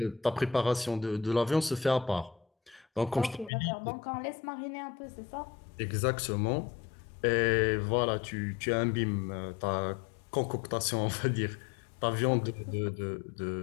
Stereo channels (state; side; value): drops out; right; at 3.5 s